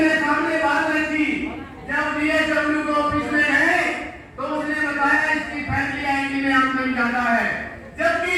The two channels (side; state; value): both; identical; correlation 1.00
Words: सामने बात रखी। जब DSW को ऑफिस में है तो उसने बताया इसकी फैमिली आईडी में आमदन ज्यादा है,